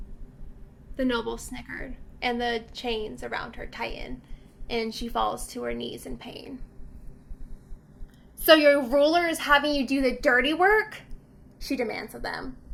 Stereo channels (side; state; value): both; identical; correlation 1.00